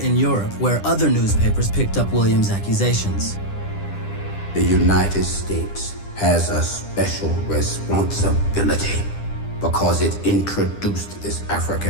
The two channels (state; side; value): late; right; 10 ms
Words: Europe where other newspapers picked up Williams' accusations. The United States has a special responsibility because it introduced this